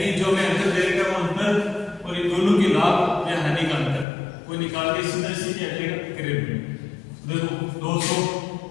जो मैं अंतर दे रहा हूं अंतर और इन दोनों के लाभ या हानि का अंतर वो निकाल के सीधा सीधे अटेगा करेंगे। देखो 200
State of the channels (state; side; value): drops out; right; at 4.0 s